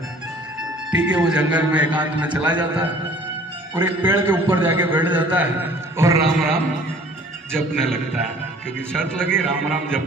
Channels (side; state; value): both; normal; correlation 0.51